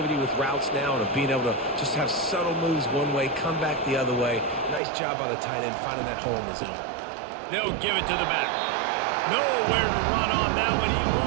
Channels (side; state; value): left; drops out; at 4.8 s